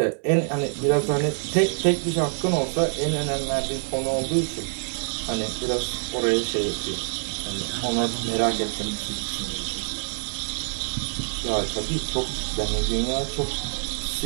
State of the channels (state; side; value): silent; left; 58 dB below the other